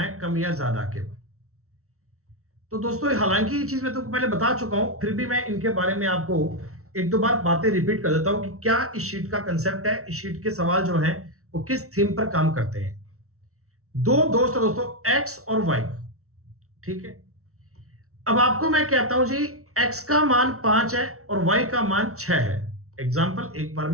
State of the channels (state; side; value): late; left; 0.64 ms